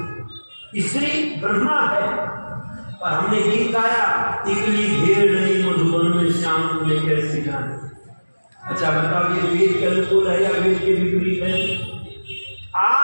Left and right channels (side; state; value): both; inverted; correlation -1.00